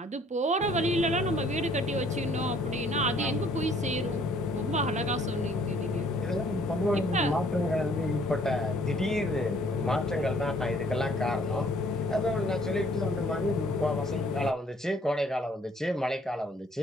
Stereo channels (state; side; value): normal; both; correlation 0.60